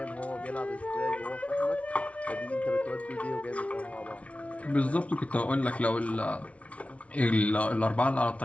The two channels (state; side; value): late; right; 0.064 ms